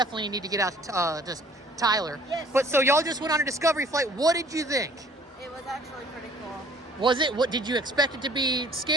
need to get out to just Tyler. Yes. But so y'all just went on a discovery flight. What did you think? It was actually pretty cool. Was it? What did you expect it to be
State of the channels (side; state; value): both; normal; correlation 0.54